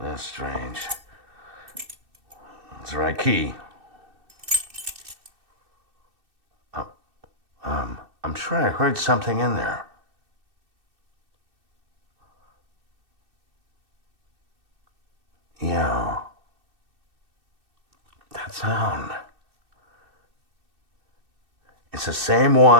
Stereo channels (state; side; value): late; left; 2.6 ms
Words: That's strange. It's the right key. I'm sure I heard something in there. Yeah. That sound. It's the same